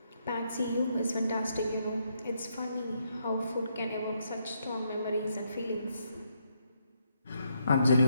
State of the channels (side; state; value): both; inverted; correlation -0.76